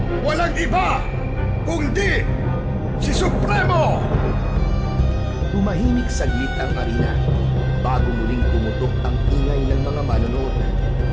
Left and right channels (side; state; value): both; identical; correlation 1.00